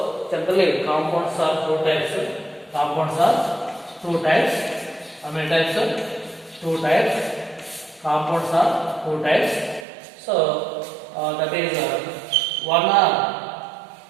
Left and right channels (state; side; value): drops out; left; at 9.9 s